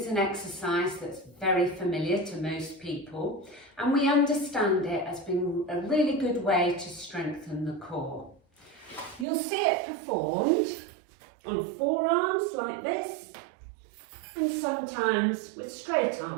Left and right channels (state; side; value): drops out; left; at 9.2 s